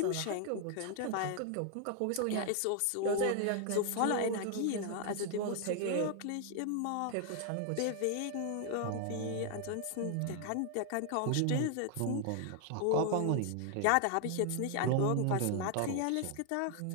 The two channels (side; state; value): both; different; correlation 0.00